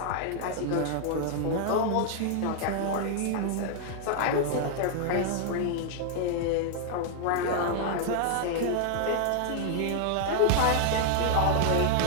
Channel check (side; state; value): both; different; correlation 0.00